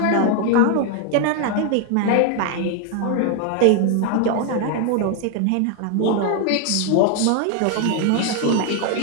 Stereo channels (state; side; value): different; both; correlation 0.00